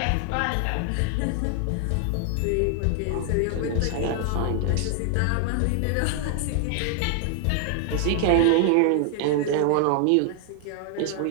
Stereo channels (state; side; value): different; both; correlation 0.00